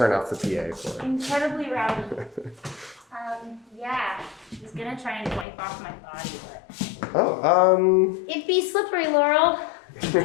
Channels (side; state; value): right; drops out; at 5.5 s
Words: off the PA for it. Incredibly rowdy. Yeah, I was gonna try and wipe off my body, but Oh, it'd be slippery, Laurel.